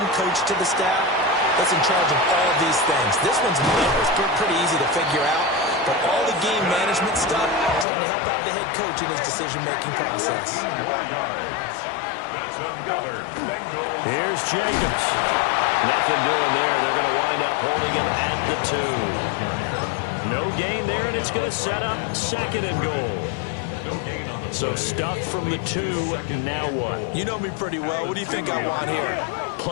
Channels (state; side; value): drops out; right; at 7.9 s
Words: coach to the staff that's in charge of all these things. This one's pretty easy to figure out, but all the game management stuff trying to help out the head coach in his decision-making process. That's another Bengals. Here's Jacobs. Nothing doing there. They're going to wind up holding him at the 2. No gain there, and it's going to set up 2nd and goal. No gain on the So stuffed from the 2. Now what? You know me pretty well. What do you think I want here?